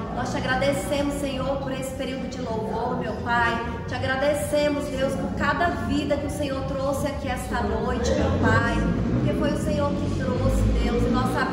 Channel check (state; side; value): identical; both; correlation 1.00